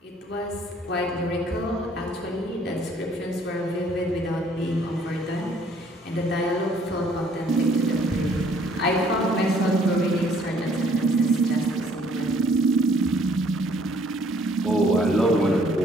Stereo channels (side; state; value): both; normal; correlation 0.61